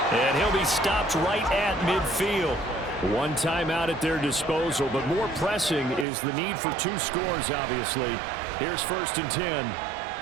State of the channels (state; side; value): drops out; left; at 6.1 s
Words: And he'll be stopped right at midfield. 1 timeout at their disposal, but more pressing is the need for 2 scores, obviously. Here's 1st and 10.